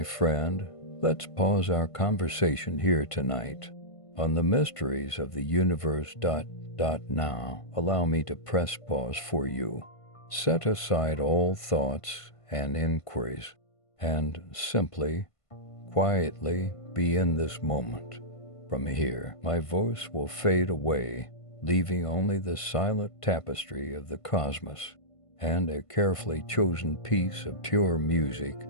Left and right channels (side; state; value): right; late; 1.5 ms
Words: friend, let's pause our conversation here tonight on the mysteries of the universe. Now, allow me to press pause for you. Set aside all thoughts and inquiries and simply, quietly be in this moment. From here, my voice will fade away, leaving only the silent tapestry of the cosmos and a carefully chosen piece of pure music